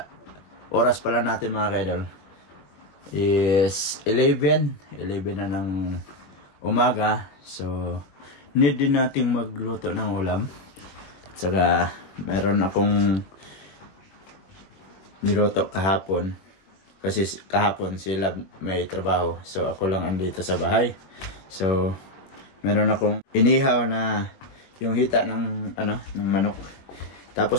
oras pala natin mga ka-idol is 11 na ng umaga. So need din nating magluto ng ulam. Saka meron akong niluto kahapon. Kasi kahapon sila may trabaho. So ako lang andito sa bahay. So meron akong inihaw na yung hita ng ng manok.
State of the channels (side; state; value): right; late; 21 ms